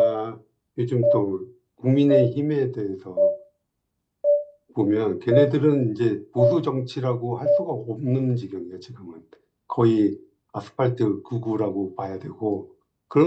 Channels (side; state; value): both; identical; correlation 1.00